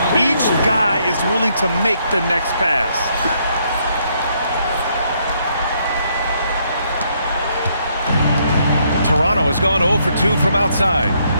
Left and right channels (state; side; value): inverted; both; correlation -0.72